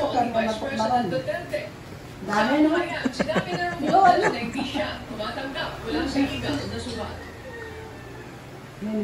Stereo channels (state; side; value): identical; both; correlation 1.00